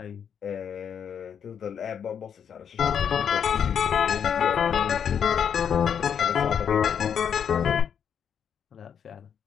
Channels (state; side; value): quieter; right; 7.9 dB